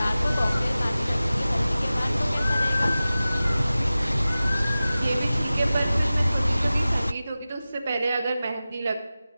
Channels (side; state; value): both; inverted; correlation -0.96